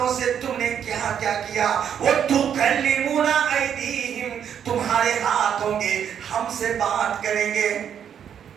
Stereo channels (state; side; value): quieter; left; 8.6 dB